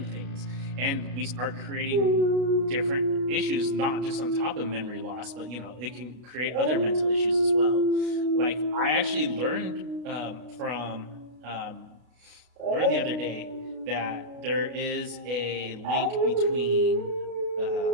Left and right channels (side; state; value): left; late; 33 ms